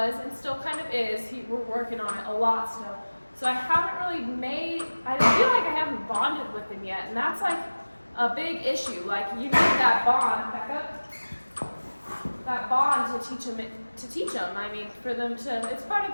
and still kind of is. We're working on it a lot still. So I haven't really I feel like I haven't bonded with him yet, and that's like a big issue. Like you need that bond, back up, that bond to teach him. I mean, for them to, it's part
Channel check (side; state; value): both; inverted; correlation -1.00